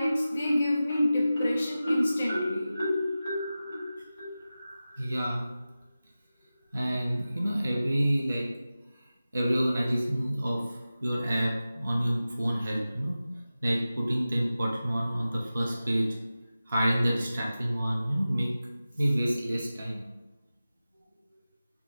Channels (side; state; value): both; inverted; correlation -0.95